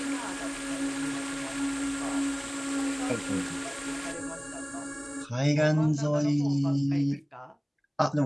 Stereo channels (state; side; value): identical; both; correlation 1.00